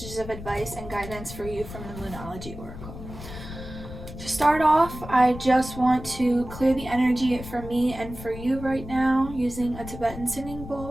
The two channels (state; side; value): noise; left; rumble, 12 dB below the sound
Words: of advice and guidance for you from the Moonology Oracle. To start off, I just want to clear the energy for me and for you right now using a Tibetan singing